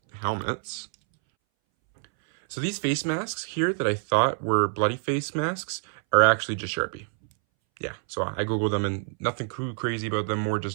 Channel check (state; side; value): silent; left; 61 dB below the other